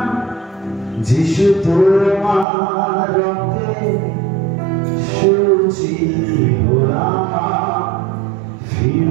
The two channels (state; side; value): drops out; left; at 2.5 s